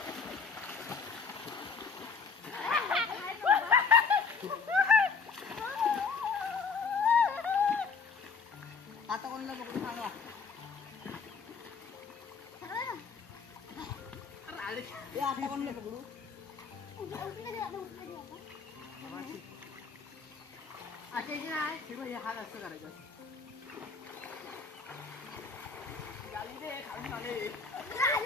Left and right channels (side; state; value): right; quieter; 5.3 dB